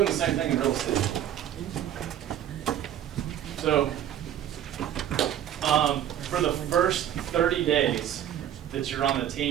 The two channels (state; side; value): quieter; left; 10.9 dB